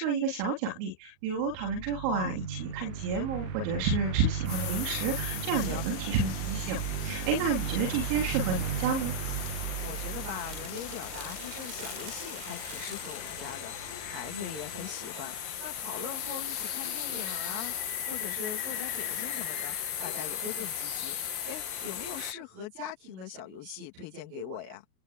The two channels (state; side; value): late; left; 38 ms